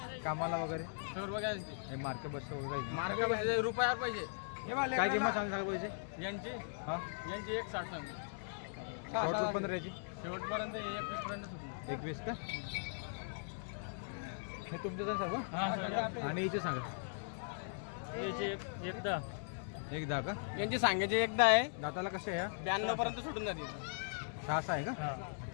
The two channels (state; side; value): silent; right; digital silence